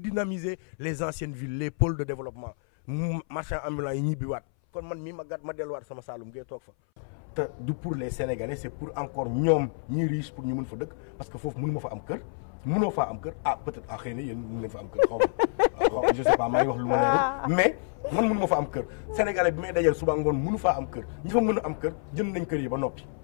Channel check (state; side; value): silent; right; 59 dB below the other